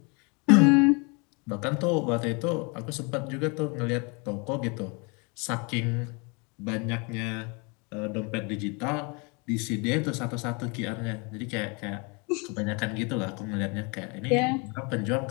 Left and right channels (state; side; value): quieter; right; 31.4 dB